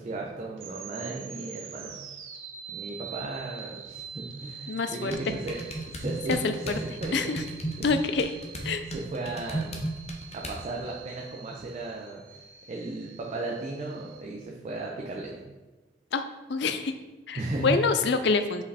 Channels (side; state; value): both; normal; correlation 0.32